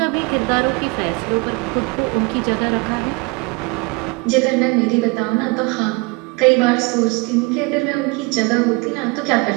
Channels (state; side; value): quieter; left; 27.5 dB